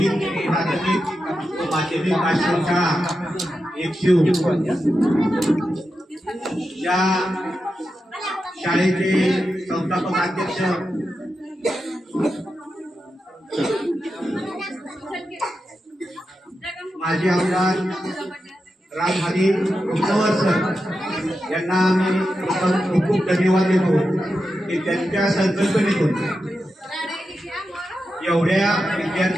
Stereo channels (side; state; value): both; normal; correlation 0.89